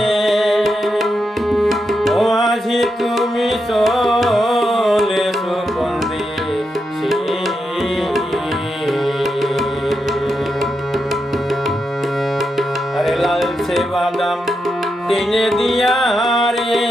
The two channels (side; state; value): both; normal; correlation 0.85